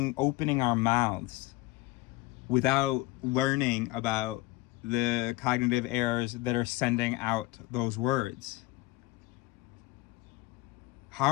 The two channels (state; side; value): quieter; right; 19.6 dB